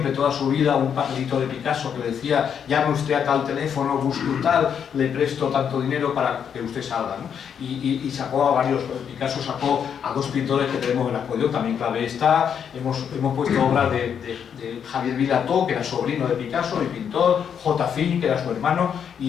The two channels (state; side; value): quieter; right; 7.8 dB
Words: toda su vida un papelito de Picasso que le decía: llame usted a tal teléfono, busque un tal, le presto tanto dinero para que usted salga, ¿no? Y sacó a varios. Picasso sacó a 2 pintores que tenemos en la exposición, también clave está. Hemos puesto obras de Javier Vilató, que era sobrino de Picasso y pintor, J. Fin, que era su hermano,